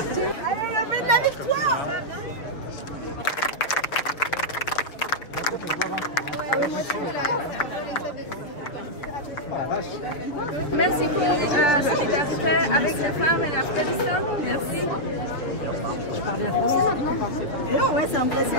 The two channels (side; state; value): right; late; 6.4 ms